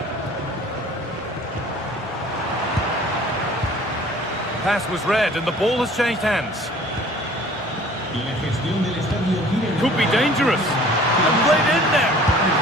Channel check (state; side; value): normal; both; correlation 0.50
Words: Pass was read and the ball has changed hands. Could be dangerous. And played in there.